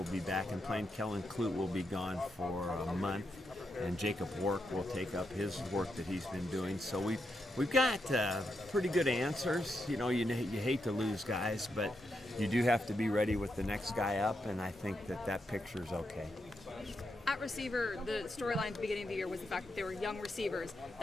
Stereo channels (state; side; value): normal; both; correlation 0.83